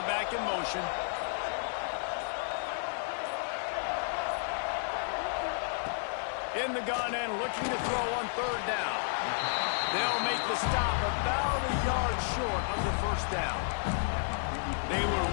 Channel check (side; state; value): right; silent; digital silence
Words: it back in motion. In the gun and looking to throw on third down. They'll make the stop about a yard short of the first down. They were